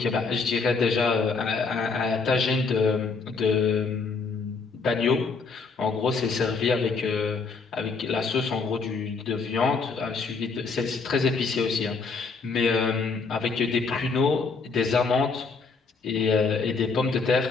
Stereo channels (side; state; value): right; quieter; 4.6 dB